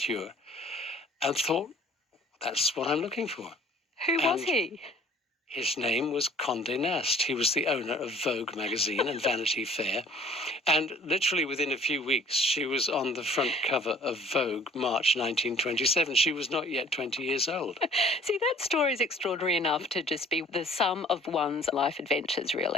and thought, that's what I'm looking for. Who was he? His name was Condé Nast. He was the owner of Vogue magazine and Vanity Fair. And literally within a few weeks, she was on the front cover of Vogue, March 1927. She was not yet 20 years old. See, that story is extraordinary enough to just be the sum of one's life adventures,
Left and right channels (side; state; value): both; normal; correlation 0.53